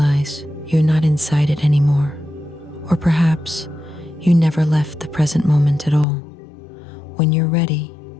you're not inside it anymore. Or perhaps you never left the present moment at all. When you're ready,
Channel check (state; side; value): drops out; right; at 6.1 s